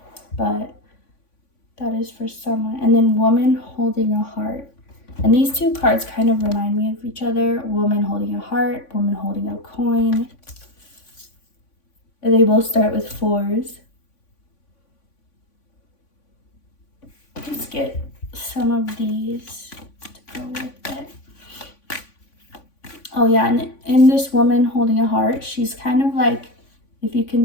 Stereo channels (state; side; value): late; right; 3.5 ms